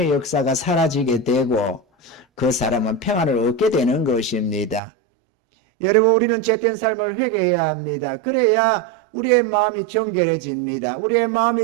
역사가 사라지게 되고 그 사람은 평안을 얻게 되는 것입니다. 여러분, 우리는 죄된 삶을 회개해야 합니다. 그래야 우리의 마음이 정결해집니다. 우리의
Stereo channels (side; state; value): left; drops out; at 4.8 s